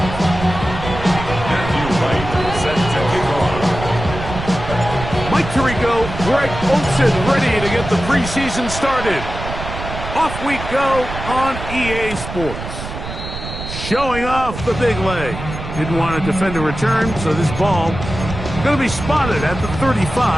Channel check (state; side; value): noise; right; rumble, 8 dB below the sound